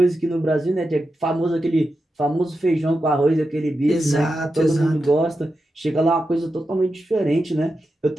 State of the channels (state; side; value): normal; both; correlation 0.89